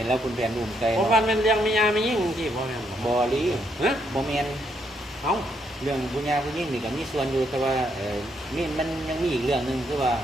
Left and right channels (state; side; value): normal; both; correlation 0.75